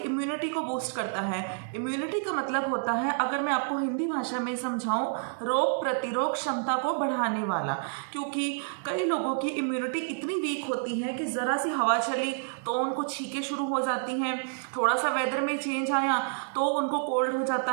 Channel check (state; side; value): silent; left; 59 dB below the other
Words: को बूस्ट करता है। इम्यूनिटी का मतलब होता है, अगर मैं आपको हिंदी भाषा में समझाऊं, रोग प्रतिरोध क्षमता को बढ़ाने वाला। क्योंकि कई लोगों की इम्यूनिटी इतनी वीक होती है कि ज़रा सी हवा चली तो उनको छींकें शुरू हो जाती हैं, थोड़ा सा वेदर में चेंज आया तो उनको कोल्ड हो जाता